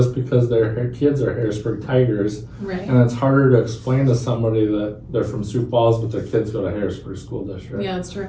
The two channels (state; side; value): identical; both; correlation 1.00